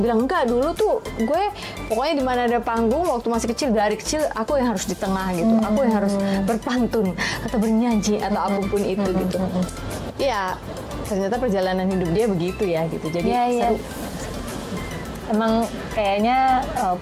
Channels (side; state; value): both; identical; correlation 1.00